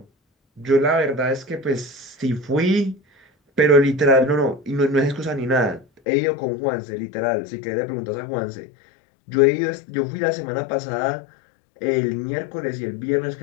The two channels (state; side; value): drops out; right; at 5.9 s